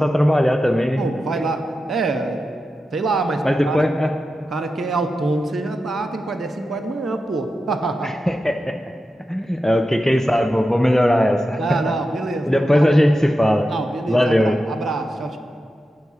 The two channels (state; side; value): normal; both; correlation 0.90